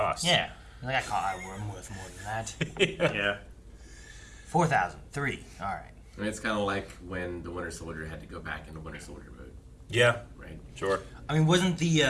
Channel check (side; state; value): both; identical; correlation 1.00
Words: Yeah. Like, I'm worth more than that. Yeah. 4,000. 3. All right. I mean, it's kind of like when the Winter Soldier had to go back into Winter Soldier mode, Yeah, right? sure. I mean, wasn't